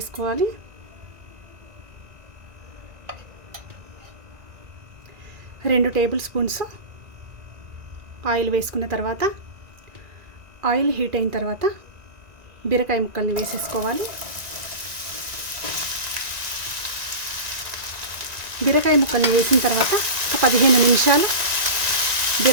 రెండు టేబుల్ స్పూన్స్ ఆయిల్ వేసుకున్న తర్వాత ఆయిల్ హీట్ అయిన తర్వాత బీరకాయ ముక్కల్ని వేసేసుకోవాలి. బీరకాయ ముక్కల్ని వేసిన తర్వాత ఒక 15 నిమిషాలు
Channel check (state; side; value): late; left; 1.9 ms